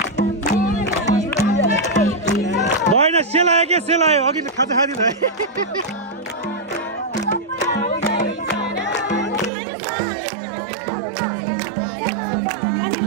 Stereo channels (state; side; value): drops out; left; at 9.5 s